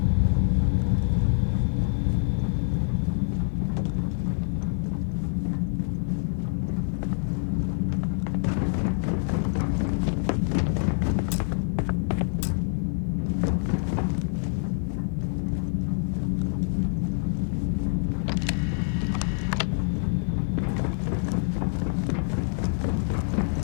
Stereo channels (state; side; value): silent; right; digital silence